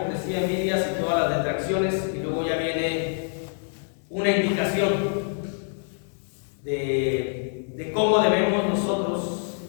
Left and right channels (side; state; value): right; silent; digital silence